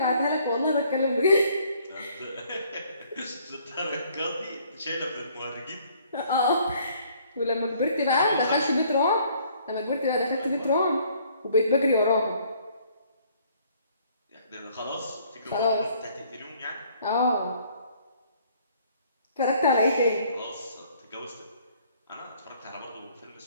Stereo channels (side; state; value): both; inverted; correlation -0.61